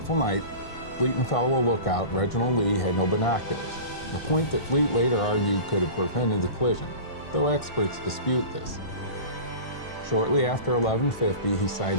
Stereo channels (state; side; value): late; right; 1.5 ms